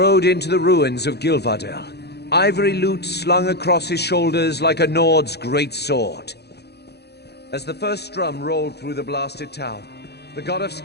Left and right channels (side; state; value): right; late; 0.48 ms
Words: into the ruins of Gilvardel, ivory lute slung across his shoulders like a Nord's great sword. As the first drum rolled through the blasted town, the god of